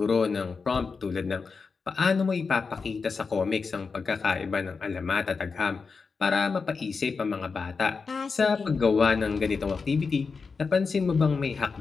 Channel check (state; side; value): quieter; right; 4.9 dB